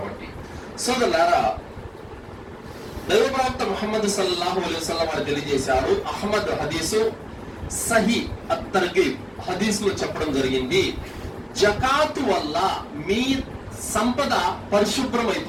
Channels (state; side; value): identical; both; correlation 1.00